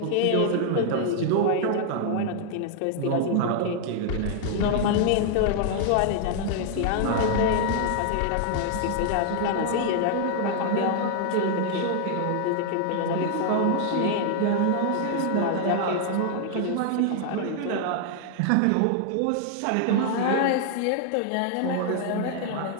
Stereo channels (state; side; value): different; both; correlation 0.00